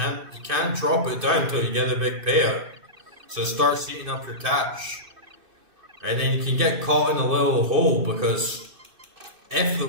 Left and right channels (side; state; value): left; late; 2.6 ms